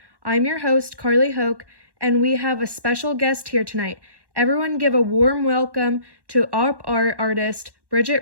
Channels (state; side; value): late; left; 1.1 ms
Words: I'm your host, Carly Hoke, and we have a special guest here tonight. Everyone give a warm welcome to op art artist,